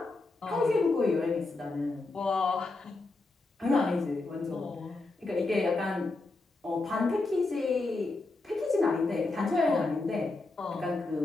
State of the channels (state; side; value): quieter; right; 3.3 dB